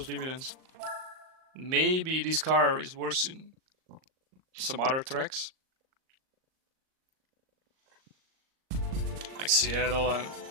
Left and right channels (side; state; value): left; late; 38 ms